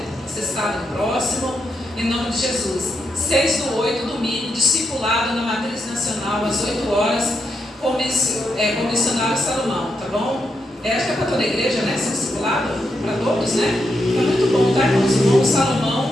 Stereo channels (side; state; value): both; normal; correlation 0.83